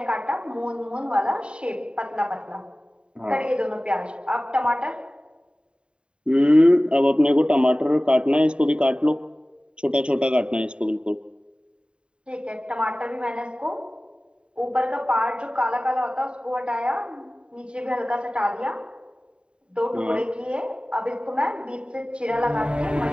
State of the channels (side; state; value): left; late; 0.052 ms